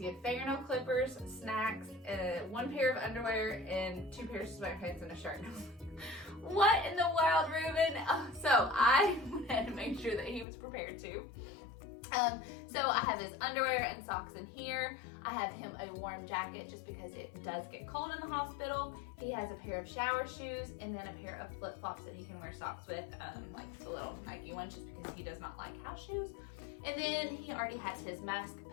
had fingernail clippers, snacks, 1 pair of underwear, and 2 pairs of sweatpants and a shirt. What in the world, Ruben? So I had to make sure that he was prepared too. So I have his underwear and socks in here. I have him a warm jacket just because it does get cold in the hospital. He has a pair of shower shoes and then a pair of flip-flops that he can wear socks with, like the little Nike ones, just because he does not like house shoes. And then he already has his mask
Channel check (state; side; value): drops out; right; at 10.5 s